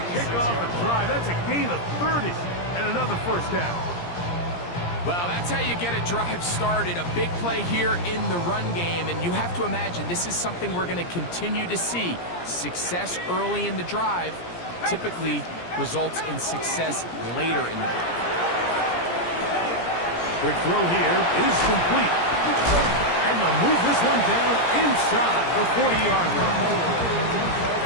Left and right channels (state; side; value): late; right; 17 ms